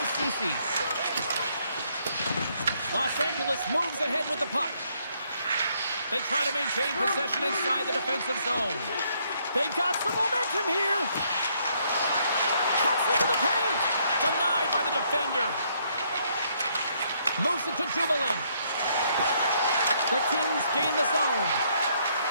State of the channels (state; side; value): inverted; both; correlation -0.70